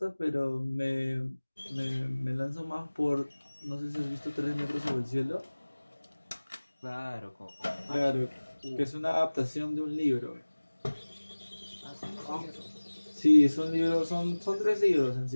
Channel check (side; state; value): both; inverted; correlation -1.00